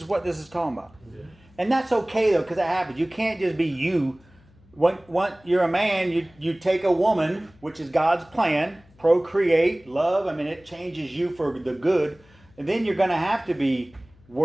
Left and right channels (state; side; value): noise; left; hum, 29 dB below the sound